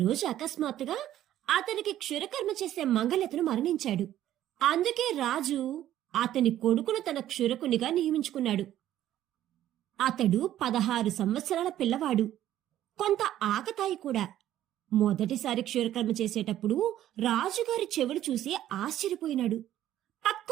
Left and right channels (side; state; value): left; quieter; 12.5 dB